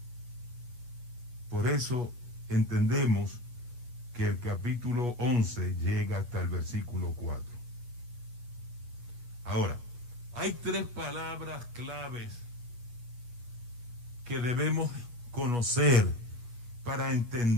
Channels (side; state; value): left; late; 8.3 ms